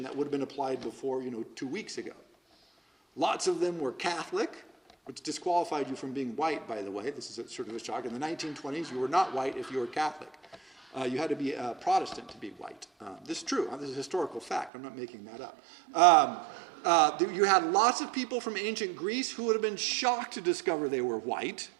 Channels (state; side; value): drops out; left; at 14.7 s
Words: that would have been applied before, 2 weeks ago. Lots of them were Catholic, which disqualified you from being white, by the way. This is sort of a shock. In the 1920s, you were not white if you were Catholic. You had to be a Protestant to be white. This is true. This is a historical fact. I'm not making that up. You had lots of people from ancient Greece who would have been shocked to discover they were white.